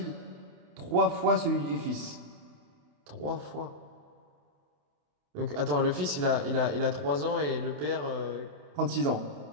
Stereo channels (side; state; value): left; late; 27 ms